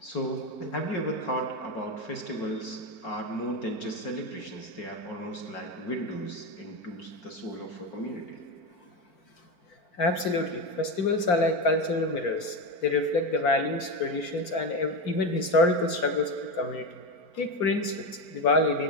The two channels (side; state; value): right; late; 4.5 ms